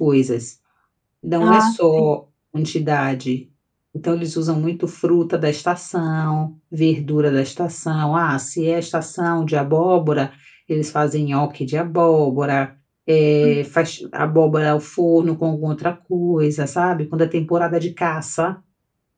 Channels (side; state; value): both; identical; correlation 1.00